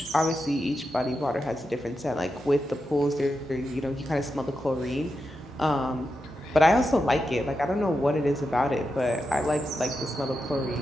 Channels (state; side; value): normal; both; correlation 0.88